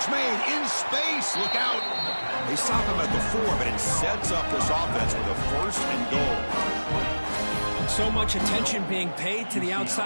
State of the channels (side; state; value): both; inverted; correlation -1.00